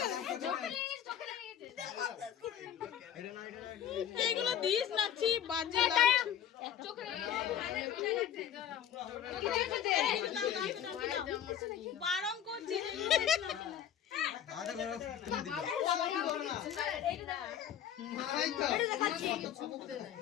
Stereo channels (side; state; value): right; quieter; 9.9 dB